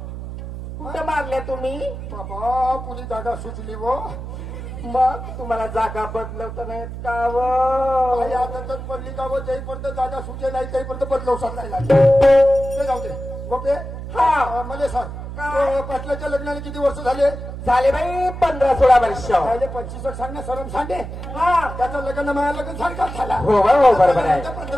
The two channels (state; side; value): noise; right; hum, 9 dB below the sound